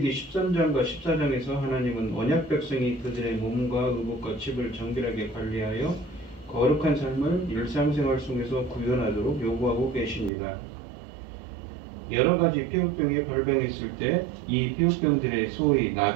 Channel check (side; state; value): left; drops out; at 10.3 s